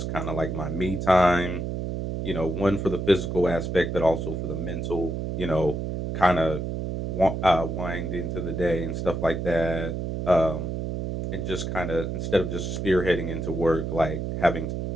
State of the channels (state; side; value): noise; right; hum, 3 dB below the sound